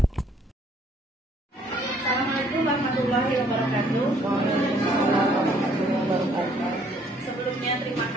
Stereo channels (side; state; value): both; normal; correlation 0.63